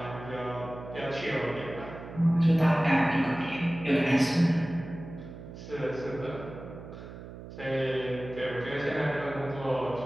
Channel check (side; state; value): right; noise; hum, 13 dB below the sound